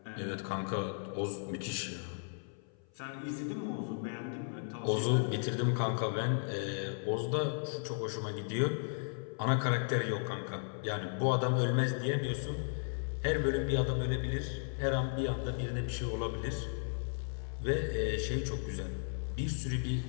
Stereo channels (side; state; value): right; silent; 54 dB below the other